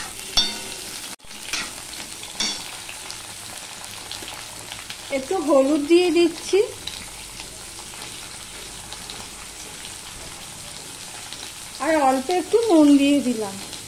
একটু হলুদ দিয়ে দিচ্ছি, আর অল্প একটু নুন দিয়ে দিলাম।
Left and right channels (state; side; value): identical; both; correlation 1.00